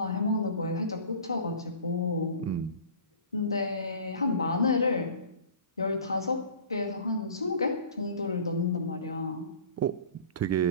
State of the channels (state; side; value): inverted; both; correlation -0.43